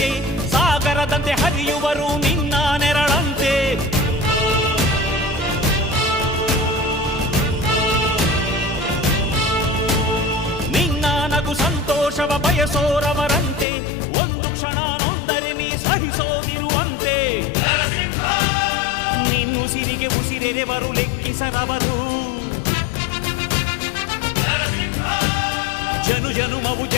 ಸಾಗರದಂತೆ ಹರಿಯುವರು ನಿನ್ನ ನೆರಳಂತೆ. ನಿನ್ನ ನಗು ಸಂತೋಷವ ಬಯಸೋರವರಂತೆ, ಒಂದು ಕ್ಷಣ ನೊಂದರೆ ನೀ ಸಹಿಸೋದಿರುವಂತೆ. ನಿನ್ನುಸಿರಿಗೆ ಉಸಿರೆರೆವರು ಲೆಕ್ಕಿಸರವರು, ಜನು ಜನುಮವು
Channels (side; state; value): right; drops out; at 13.7 s